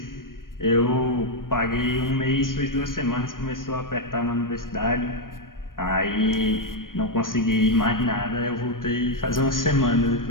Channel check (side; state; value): right; late; 0.90 ms